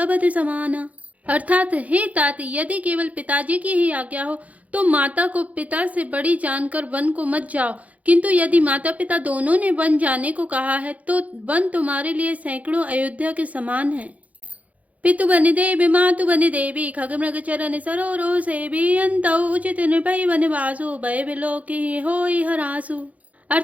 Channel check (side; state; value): left; late; 0.070 ms